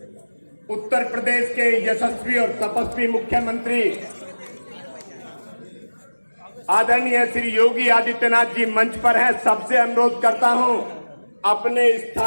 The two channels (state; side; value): inverted; both; correlation -1.00